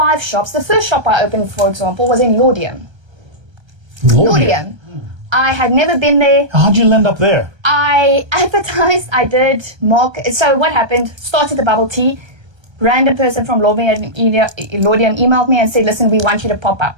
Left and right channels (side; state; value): left; late; 1.3 ms